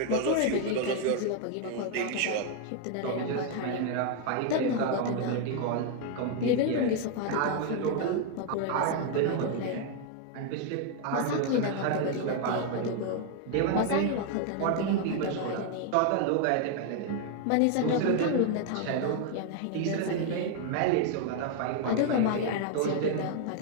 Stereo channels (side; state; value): both; different; correlation 0.00